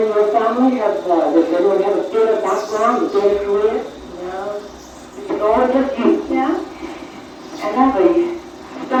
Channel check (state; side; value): identical; both; correlation 1.00